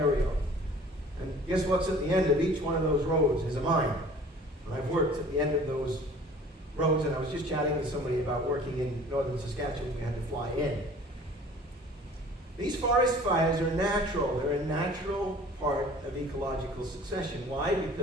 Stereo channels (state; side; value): normal; both; correlation 0.48